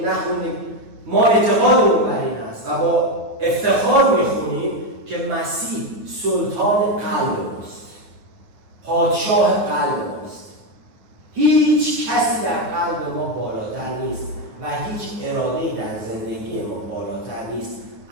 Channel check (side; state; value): left; late; 9.2 ms